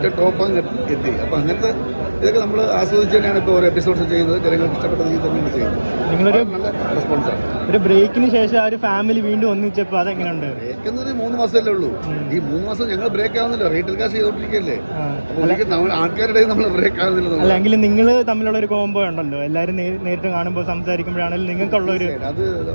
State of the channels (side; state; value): both; inverted; correlation -1.00